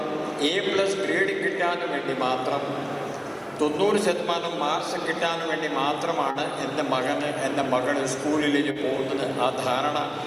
A+ ഗ്രേഡ് കിട്ടാൻ വേണ്ടി മാത്രം 90% മാർക്സ് കിട്ടാൻ വേണ്ടി മാത്രമാണ് എൻ്റെ മകൾ സ്കൂളിലേക്ക് പോകുന്നത്. ആ ധാരണ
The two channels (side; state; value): both; identical; correlation 1.00